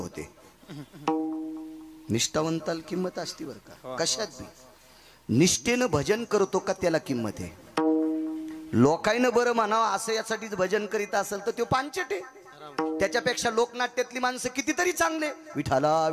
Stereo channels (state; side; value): identical; both; correlation 1.00